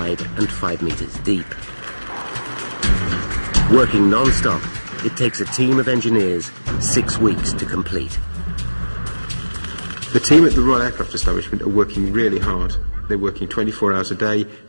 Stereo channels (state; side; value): inverted; both; correlation -1.00